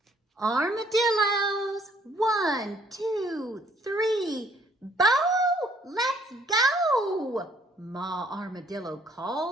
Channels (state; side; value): normal; both; correlation 0.63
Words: Armadillos, 1, 2, 3, Bo, let's go! Ma Armadillo